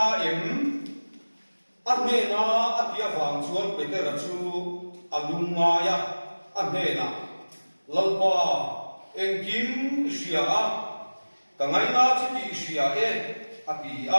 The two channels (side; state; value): both; inverted; correlation -1.00